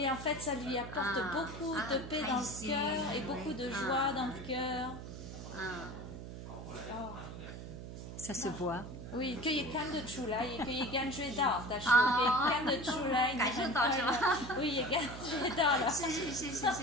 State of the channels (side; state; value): right; noise; hum, 10 dB below the sound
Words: en fait, ça lui apporte beaucoup de paix dans le cœur et beaucoup de joie dans le cœur. Ça se voit. Oui, 可以看得出来，也可以感觉到，他说可以看得出来，感受到是吧？oui，也感觉到了。谢谢，